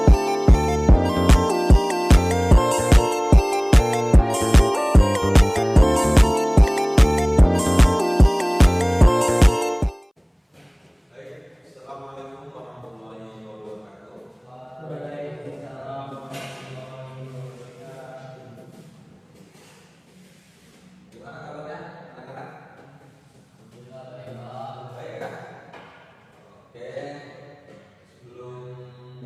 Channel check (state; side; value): identical; both; correlation 1.00